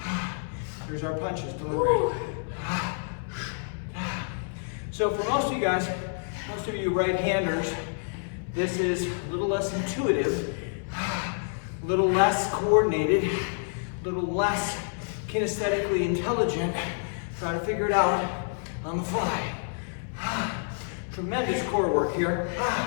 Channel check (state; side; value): silent; right; 59 dB below the other